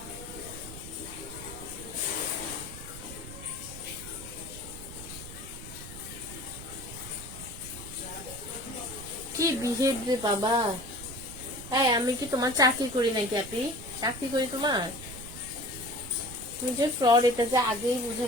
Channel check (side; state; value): right; noise; rumble, 13 dB below the sound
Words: কি বিহেভ রে বাবা! হ্যাঁ, আমি কি তোমার চাকরি করি নাকি আপনি? চাকরি করি তোমার? তুমি যে ফ্রড, এটা যে আগেই বুঝে